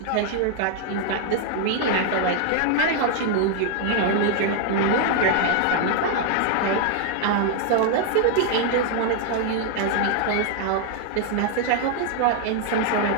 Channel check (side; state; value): both; different; correlation 0.00